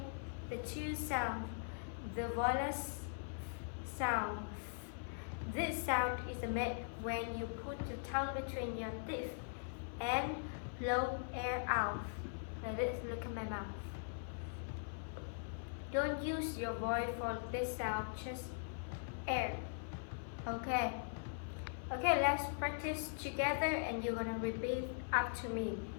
the two sounds. The voiceless sound. This sound is made when you put the tongue between your teeth and blow air out. Like this, look at my mouth. Don't use your voice for this sound, just air. Okay. Okay, let's practice together and you're gonna repeat after me.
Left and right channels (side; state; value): right; silent; 50 dB below the other